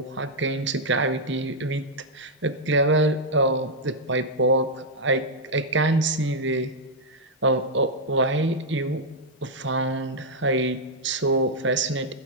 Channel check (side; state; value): both; normal; correlation -0.05